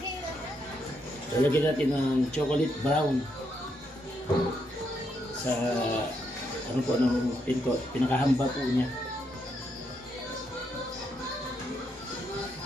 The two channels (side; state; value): both; normal; correlation 0.78